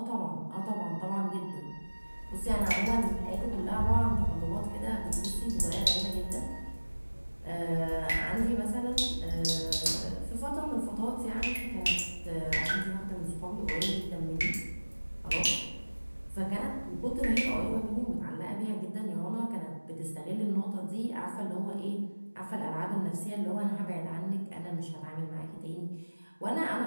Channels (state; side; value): inverted; both; correlation -1.00